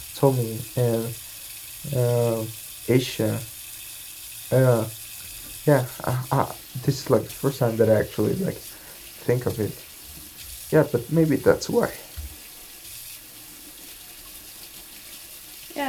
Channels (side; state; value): both; identical; correlation 1.00